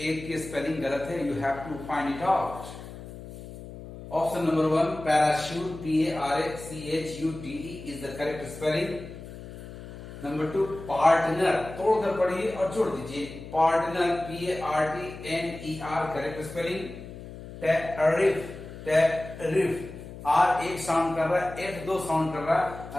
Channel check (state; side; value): noise; left; hum, 13 dB below the sound